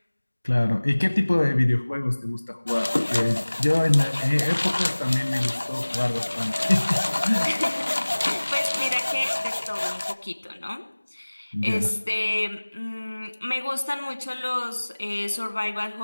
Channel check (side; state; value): both; inverted; correlation -1.00